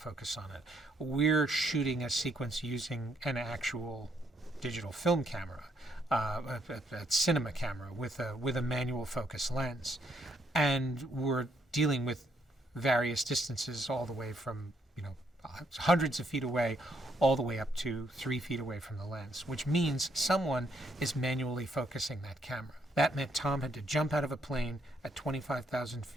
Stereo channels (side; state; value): both; normal; correlation 0.73